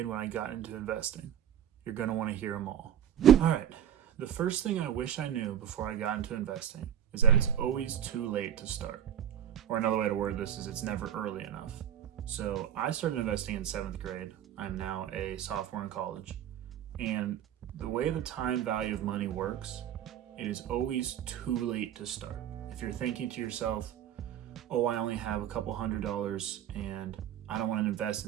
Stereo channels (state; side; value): quieter; left; 10.0 dB